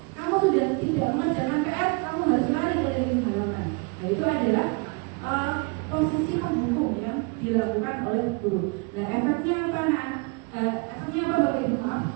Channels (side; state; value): left; quieter; 30.9 dB